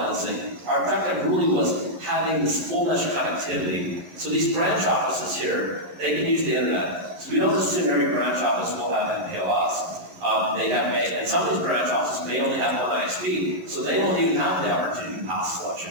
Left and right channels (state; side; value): late; left; 11 ms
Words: Our objective really was having this full mesh connectivity. So these branch offices here, they can use the internet. So we don't assume every branch office will have MPLS. And some of these branch offices may only have one ISP, so they won't even have the opportunity to pass